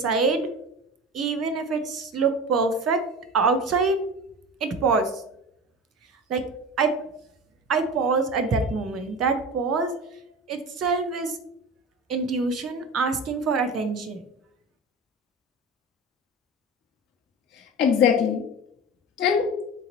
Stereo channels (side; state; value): both; normal; correlation 0.30